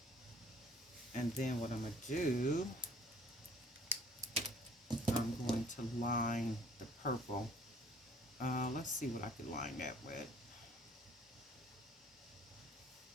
And then what I'm going to do, I'm going to line the purple. Let's see what I could line that with.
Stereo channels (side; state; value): both; normal; correlation 0.55